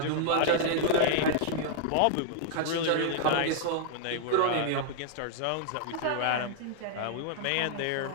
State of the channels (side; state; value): both; different; correlation -0.01